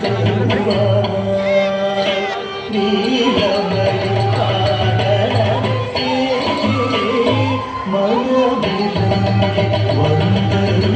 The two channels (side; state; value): both; identical; correlation 1.00